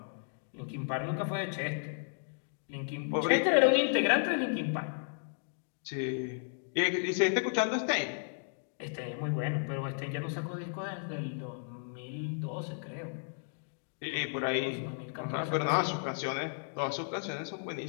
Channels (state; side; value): silent; right; digital silence